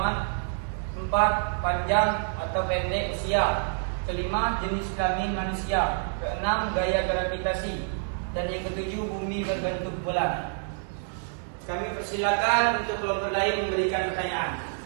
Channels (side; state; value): left; silent; 60 dB below the other